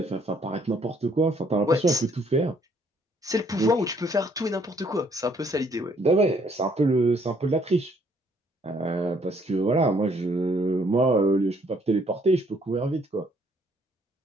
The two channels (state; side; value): normal; both; correlation 0.65